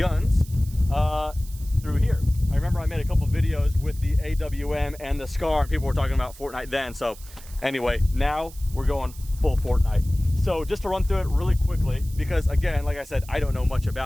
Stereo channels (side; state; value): right; noise; hiss, 20 dB below the sound